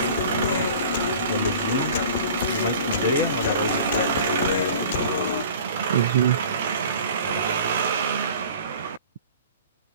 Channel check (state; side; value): inverted; both; correlation -0.43